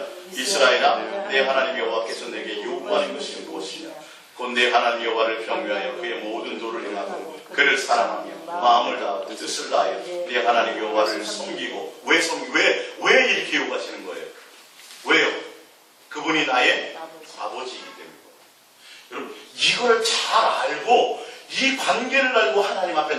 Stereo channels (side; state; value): both; identical; correlation 1.00